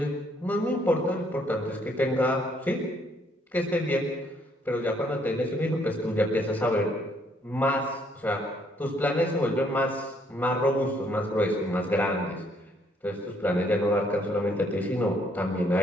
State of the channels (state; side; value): normal; both; correlation 0.68